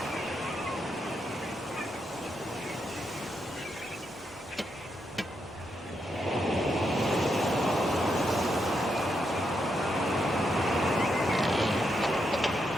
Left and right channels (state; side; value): normal; both; correlation 0.81